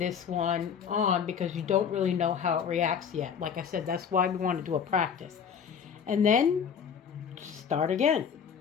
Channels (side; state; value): right; quieter; 7.2 dB